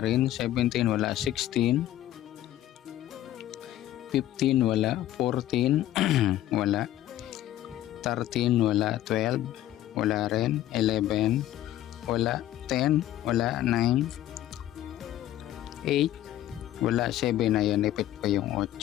17, wala. 16, 15, wala. 14, wala. 13, wala. 12, wala rin. 11, wala. 10, wala. 9, 8, wala. 7, ayan, ipit pa yung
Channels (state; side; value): quieter; right; 13.3 dB